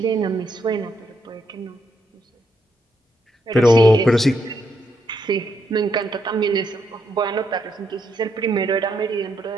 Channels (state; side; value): normal; both; correlation 0.78